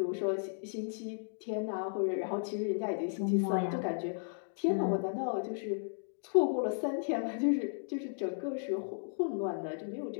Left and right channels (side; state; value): right; silent; digital silence